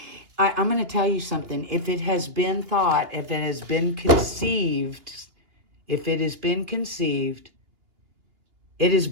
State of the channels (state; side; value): late; left; 2.9 ms